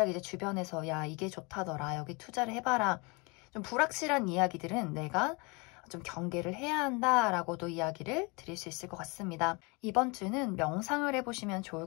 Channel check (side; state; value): right; quieter; 29.1 dB